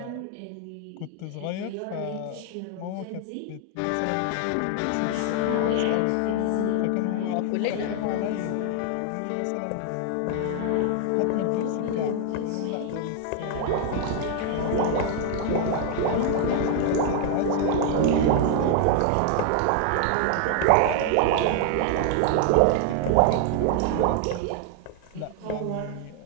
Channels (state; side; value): different; both; correlation 0.00